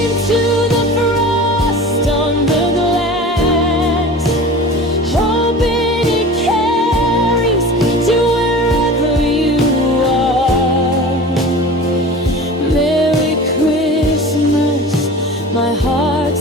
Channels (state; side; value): normal; both; correlation 0.36